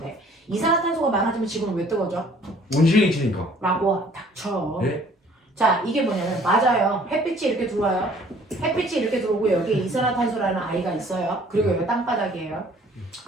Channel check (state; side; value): normal; both; correlation 0.56